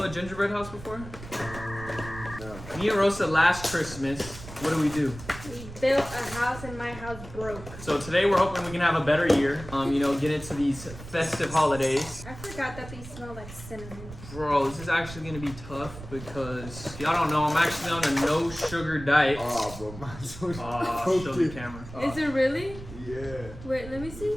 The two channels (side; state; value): right; noise; rumble, 14 dB below the sound